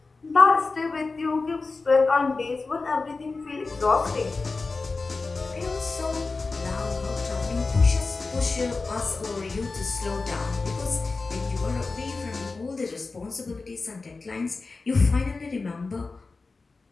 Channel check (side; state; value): right; quieter; 3.9 dB